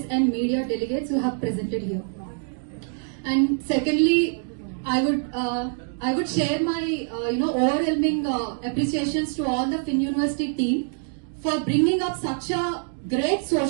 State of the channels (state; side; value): silent; left; digital silence